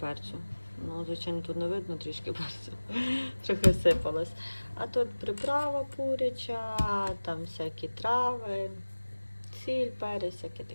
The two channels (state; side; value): inverted; both; correlation -1.00